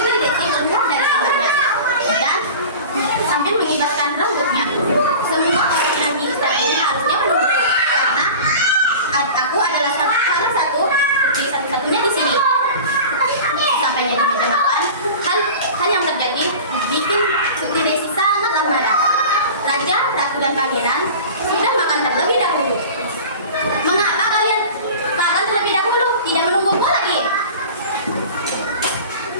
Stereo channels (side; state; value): both; inverted; correlation -0.37